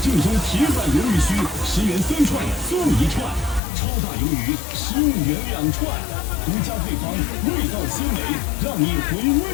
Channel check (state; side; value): drops out; right; at 3.6 s